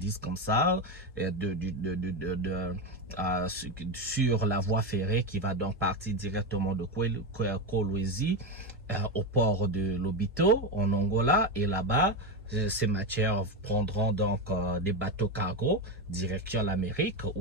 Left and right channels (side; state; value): both; normal; correlation 0.13